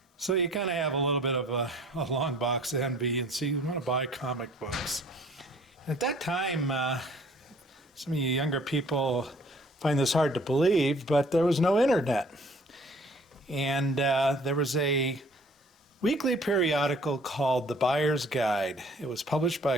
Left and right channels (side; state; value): both; normal; correlation 0.55